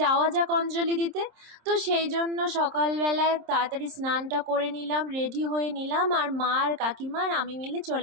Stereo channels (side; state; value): left; late; 26 ms